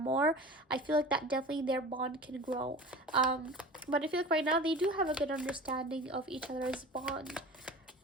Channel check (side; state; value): both; normal; correlation 0.37